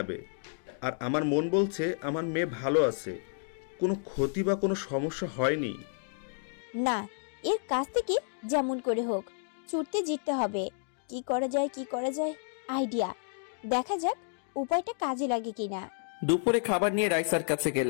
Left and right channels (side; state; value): right; silent; digital silence